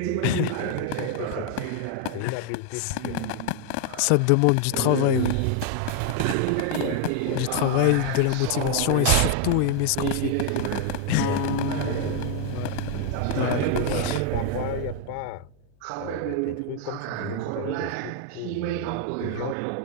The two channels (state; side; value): different; both; correlation 0.00